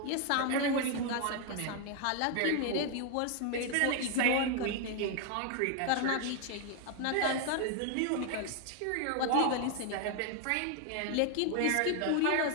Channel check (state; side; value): different; both; correlation 0.00